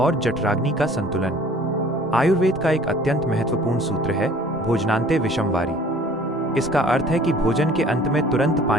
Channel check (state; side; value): normal; both; correlation 0.52